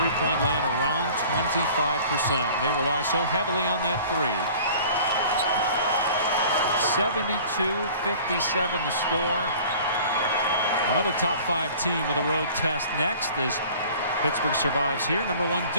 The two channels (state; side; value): inverted; both; correlation -0.46